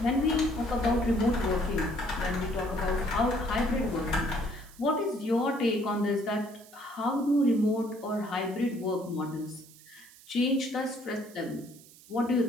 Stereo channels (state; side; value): noise; right; hiss, 22 dB below the sound